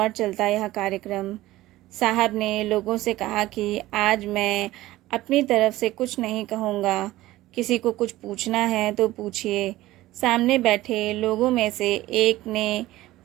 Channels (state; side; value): quieter; left; 16.7 dB